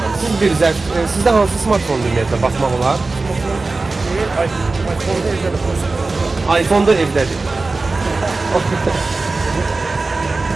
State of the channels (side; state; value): left; quieter; 3.6 dB